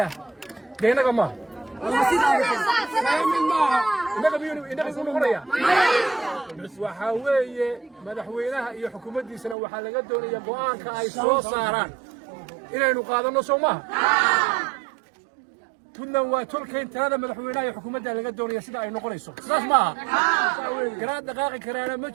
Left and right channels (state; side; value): drops out; left; at 9.6 s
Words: deenaga maaha waxaa weeye madaxweynaha iyo xukuumaddiisana waxaa laga doonaya go'aanka ay soo saaraan inaynu qaadanno soo maaha tudnan waa tolkayn talada madaxweynaha iyo xukuumadda laga doonaya sida ay noqonayso sidaas maaha garaad dhaqaaqi karaana ma